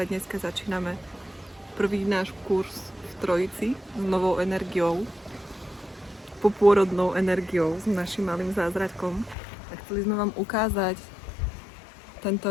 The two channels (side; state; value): right; drops out; at 9.3 s